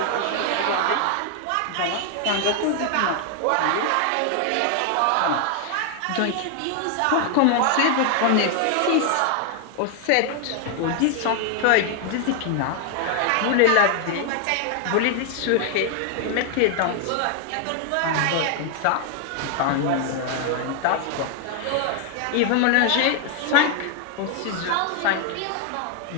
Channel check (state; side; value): different; both; correlation 0.00